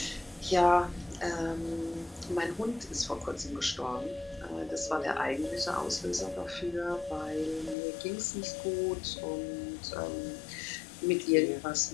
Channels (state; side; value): drops out; right; at 7.8 s